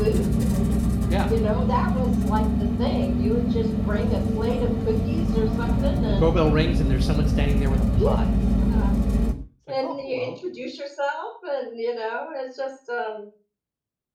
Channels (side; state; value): both; identical; correlation 1.00